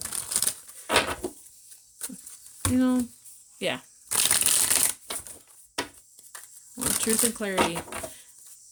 you know, yeah. Well, truth and clarity.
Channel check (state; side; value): identical; both; correlation 1.00